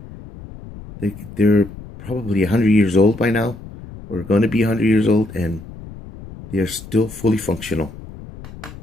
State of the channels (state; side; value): noise; left; rumble, 15 dB below the sound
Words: they're probably 100 years old by now, or going to be 100 years old, and they're still fully functional.